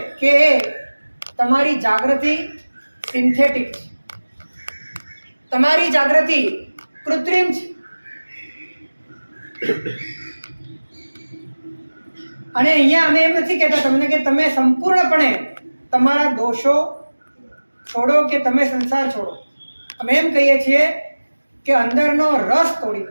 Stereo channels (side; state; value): both; inverted; correlation -1.00